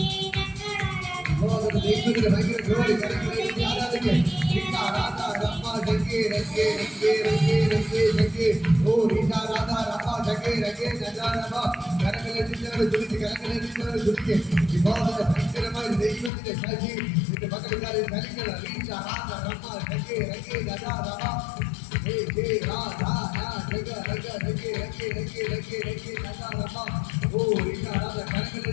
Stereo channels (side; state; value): right; drops out; at 16.3 s